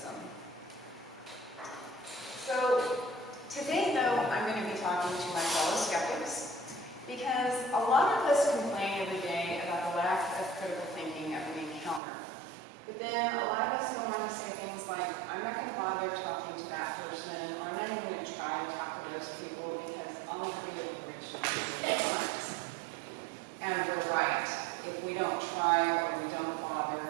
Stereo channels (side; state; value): left; drops out; at 12.0 s